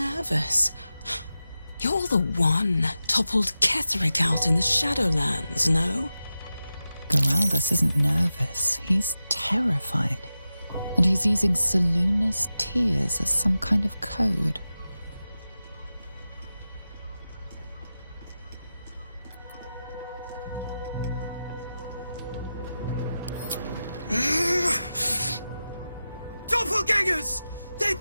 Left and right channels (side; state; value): both; inverted; correlation -0.93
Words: You're the one toppled Ketheric out in the Shadowlands, no? Geraldus isn't nervous. He's terrified. And he's using Salona's tears as some kind of code. Doppelgangers! They're